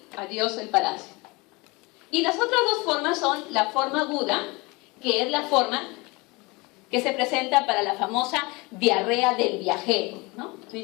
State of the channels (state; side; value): quieter; right; 25.3 dB